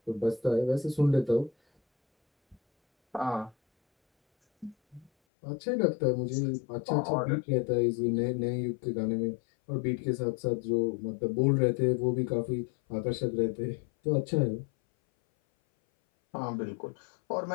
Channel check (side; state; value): right; drops out; at 5.1 s